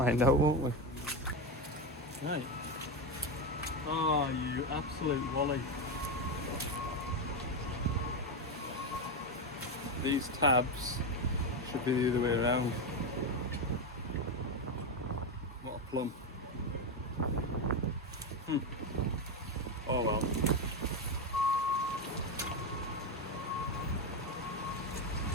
out, won't we? Right. Oh, you absolute wally. These tabs should be the other way around. What a plum. Oh well.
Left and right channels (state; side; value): normal; both; correlation 0.11